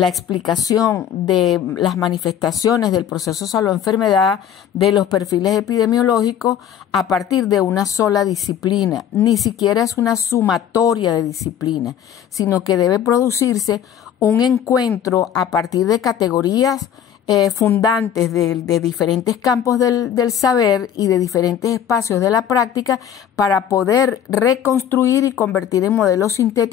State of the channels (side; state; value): right; quieter; 9.3 dB